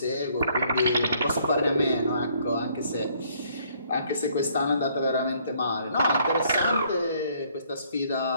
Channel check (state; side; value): inverted; both; correlation -0.64